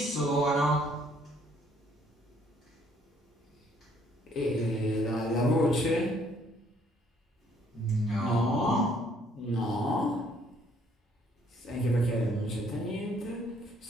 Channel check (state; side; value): normal; both; correlation 0.64